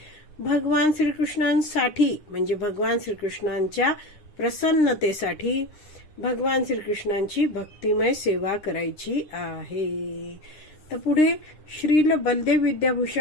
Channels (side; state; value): right; late; 9.8 ms